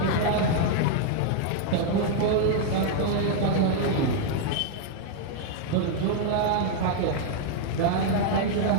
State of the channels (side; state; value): both; different; correlation 0.00